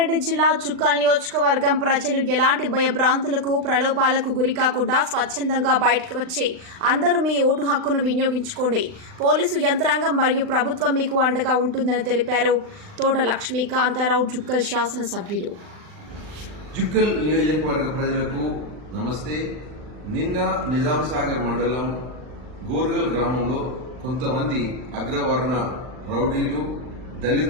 జిల్లా చుక్కల్ నియోజకవర్గం ప్రజలు ఎలాంటి భయభ్రాంతులకు ప్రలోభాలకు గురికాకుండా స్వచ్ఛందంగా బయటకు వచ్చి అందరూ మీ ఓటు హక్కును వినియోగించుకోండి. పోలీసు యంత్రాంగం మరియు ప్రభుత్వం మీకు అండగా ఉంటుందని తెలిపారు తోట లక్ష్మీకాంతారావు చుక్కల్ శాసనసభ్యులు. చుక్కల్ నియోజకవర్గ ప్రజలకు నమస్తే. నిన్న నిజాం సాగర్ మండలం గోర్గల్ గ్రామంలో కొంతమంది అగ్రవర్ణ రౌడీలు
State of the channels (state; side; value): late; left; 39 ms